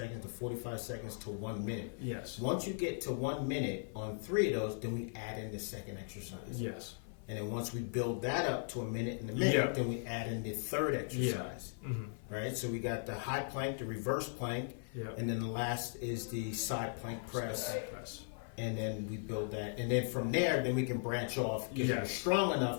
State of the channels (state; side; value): silent; right; 52 dB below the other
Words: to 45 seconds to 1 minute. Yes. Once you get to 1 minute on 3 of those, then we add in the second exercise. Yes. And then once we build that up to a minute and a minute, then we add in the third exercise. Right? So we got the high plank, the reverse plank, and then the last is the side plank press. And then we build that. And then from there, then we can branch off. If you're strong